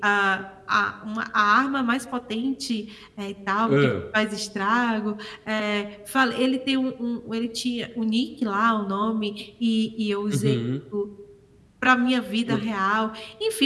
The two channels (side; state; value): both; identical; correlation 1.00